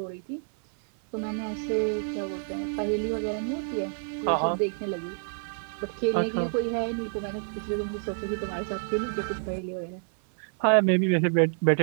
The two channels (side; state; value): left; silent; 59 dB below the other